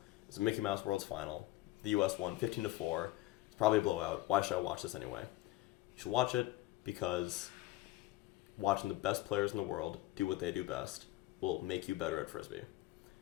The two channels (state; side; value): quieter; right; 17.3 dB